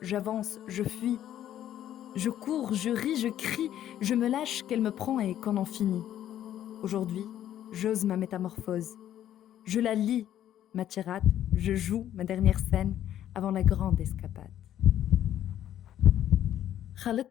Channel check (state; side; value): quieter; right; 11.5 dB